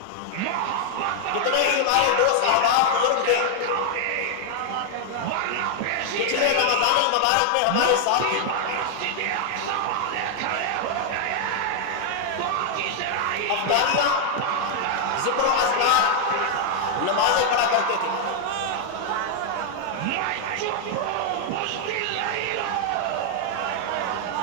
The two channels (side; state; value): both; different; correlation 0.00